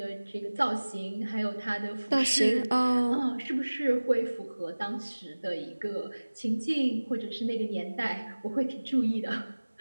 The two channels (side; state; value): both; inverted; correlation -1.00